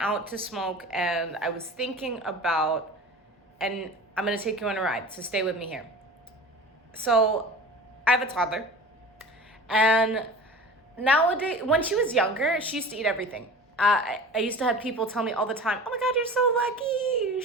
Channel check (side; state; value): both; normal; correlation 0.37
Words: to smoke and I was thinking about, and I'm going to take you on a ride, so stay with me here. So I have a toddler, and nowadays, when she was younger, she used to eat everything. I used to have people tell me all the time, "Oh my God, you're so lucky.